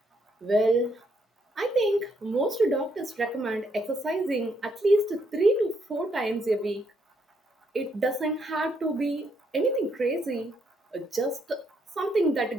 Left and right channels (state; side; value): normal; both; correlation 0.74